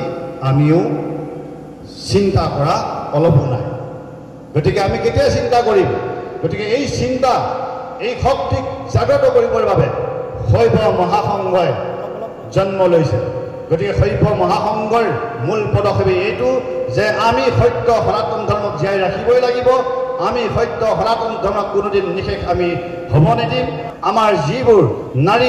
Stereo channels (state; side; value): identical; both; correlation 1.00